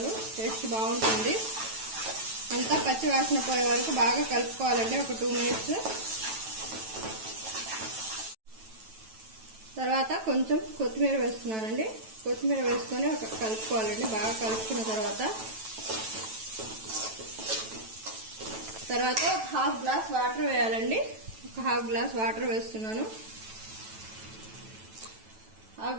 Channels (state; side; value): late; left; 9.1 ms